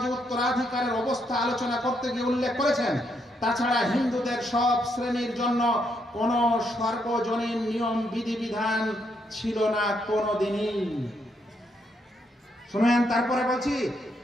উত্তরাধিকারের অবস্থা আলোচনা করতে গিয়ে উল্লেখ করেছেন, তাছাড়া হিন্দুদের সব শ্রেণীর জন্য কোন সর্বজনীন নিয়ম বিধিবিধান ছিল না কোনদিনই। শুনেন, তারপরে বলছি,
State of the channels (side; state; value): both; normal; correlation 0.76